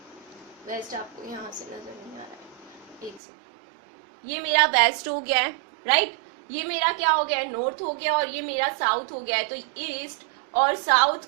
वेस्ट आपको यहाँ से नजर नहीं आ रहा है, एक से ये मेरा वेस्ट हो गया है, राइट। ये मेरा क्या हो गया है, नॉर्थ हो गया। और ये मेरा साउथ हो गया है। तो ईस्ट और साउथ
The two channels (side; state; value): left; drops out; at 3.2 s